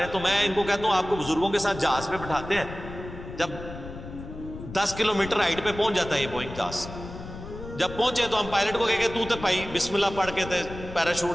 ہیں تو میں ان کو کہتا ہوں آپ کو بزرگوں کے ساتھ جہاز پہ بٹھاتے ہیں. جب 10 کلومیٹر ہائٹ پہ پہنچ جاتا ہے یہ بوئنگ جہاز, جب پہنچے تو ہم پائلٹ کو کہے تو تے بھائی بسم اللہ پڑھ کے تے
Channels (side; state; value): left; noise; rumble, 12 dB below the sound